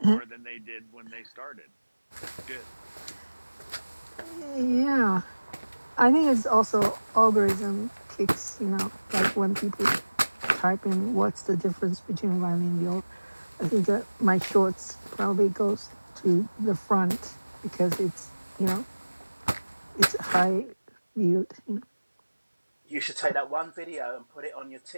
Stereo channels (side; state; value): both; inverted; correlation -1.00